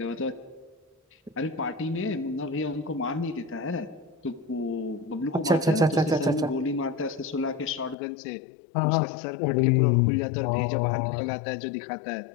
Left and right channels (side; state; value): right; drops out; at 8.0 s